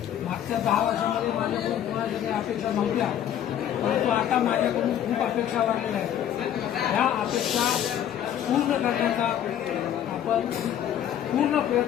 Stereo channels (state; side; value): quieter; right; 10.4 dB